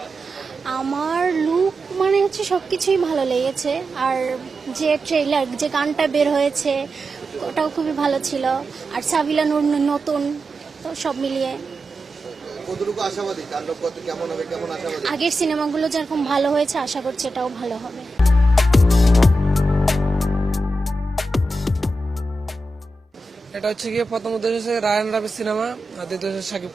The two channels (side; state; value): both; normal; correlation 0.90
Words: আমার লুক মানে হচ্ছে সবকিছুই ভালো লেগেছে, আর যে ট্রেলার, যে গানটা বের হয়েছে ওটাও খুবই ভালো ছিল, আর সাবিলা নূর নতুন, তো সব মিলিয়ে কতটুকু আশাবাদী তাণ্ডব কত কেমন হবে, কেমন আশাবাদী? আগের সিনেমাগুলো যেরকম ভালো হয়েছে আশা করছি এটাও ভালো হবে। এটা হচ্ছে গিয়ে প্রথম উদ্দেশ্য হচ্ছে রায়ান রাবির সিনেমা, আর দ্বিতীয় হচ্ছে শাকিব